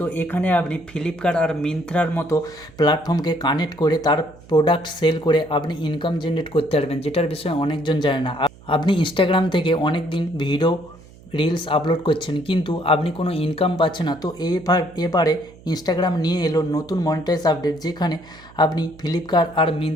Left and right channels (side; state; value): right; noise; hum, 23 dB below the sound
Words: এখানে আপনি ফ্লিপকার্ট আর মিন্ত্রার মতো প্ল্যাটফর্মকে কানেক্ট করে তার প্রোডাক্ট সেল করে আপনি ইনকাম জেনারেট করতে পারবেন, যেটার বিষয়ে অনেকজন জানে না। আপনি ইনস্টাগ্রাম থেকে অনেক দিন ভিডিও রিলস আপলোড করছেন কিন্তু আপনি কোনো ইনকাম পাচ্ছেন না, তো এবারে ইনস্টাগ্রাম নিয়ে এলো নতুন মনিটাইজ আপডেট, যেখানে আপনি ফ্লিপকার্ট আর